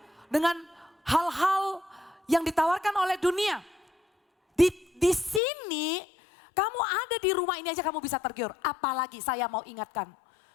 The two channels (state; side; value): drops out; right; at 5.4 s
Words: dengan hal-hal yang ditawarkan oleh dunia. Di sini kamu ada di rumah ini aja kamu bisa tergiur. Apalagi saya mau ingatkan